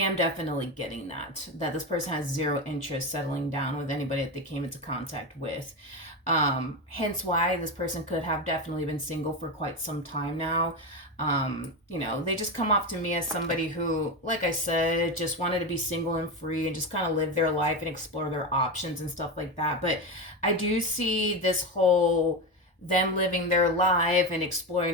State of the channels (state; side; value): normal; both; correlation 0.16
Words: definitely getting that this person has zero interest settling down with anybody that they came into contact with. Hence why this person could have definitely been single for quite some time now. You know, they just come off to me as somebody who, like I said, just wanted to be single and free and just kind of live their life and explore their options and stuff like that. But I do see this whole them living their life and